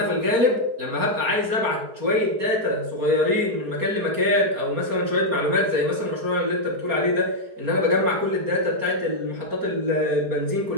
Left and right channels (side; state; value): left; late; 4.3 ms